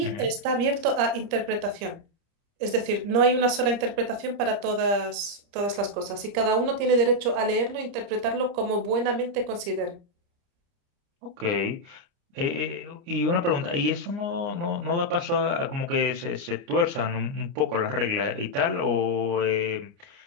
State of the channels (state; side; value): late; left; 30 ms